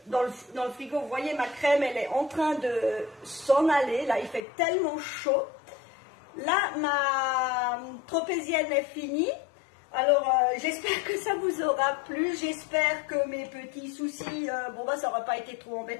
dans le frigo. Vous voyez, ma crème, elle est en train de s'en aller. Là, il fait tellement chaud. Là, ma tropézienne est finie. Alors, j'espère que ça vous aura plu. J'espère que mes petits soucis, ça n'aura pas été trop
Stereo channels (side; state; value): right; drops out; at 4.4 s